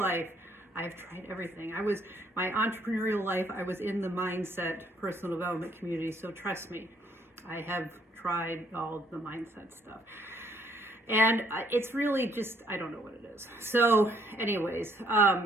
life, I've tried everything. My entrepreneurial life, I was in the mindset personal development community, so trust me, I have tried all the mindset stuff. And it's really just, I don't know what it is. So anyways,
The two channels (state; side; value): normal; both; correlation 0.67